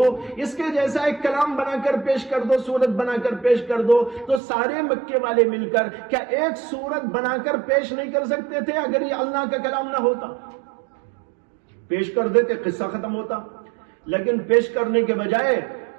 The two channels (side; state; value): left; drops out; at 4.4 s